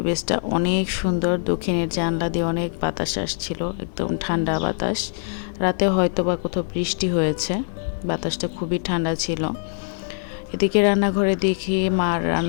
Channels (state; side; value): silent; right; digital silence